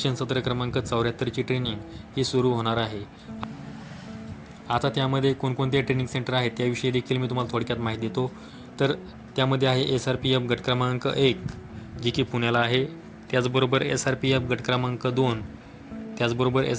सत्र क्रमांक 74 ची ट्रेनिंग ही सुरू होणार आहे. आता त्यामध्ये कोणकोणते ट्रेनिंग सेंटर आहेत त्याविषयी देखील मी तुम्हाला थोडक्यात माहिती देतो. तर त्यामध्ये आहे SRPF गट क्रमांक 1 जी की पुण्याला आहे, त्याचबरोबर SRPF गट क्रमांक 2, त्याचबरोबर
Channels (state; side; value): identical; both; correlation 1.00